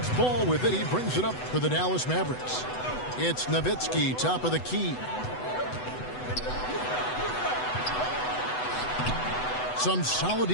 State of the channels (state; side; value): late; right; 8.0 ms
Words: Ball with it. He brings it up for the Dallas Mavericks. It's Nowitzki, top of the key. Some solid